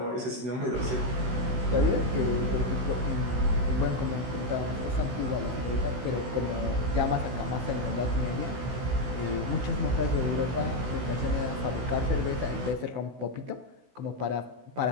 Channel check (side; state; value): left; late; 16 ms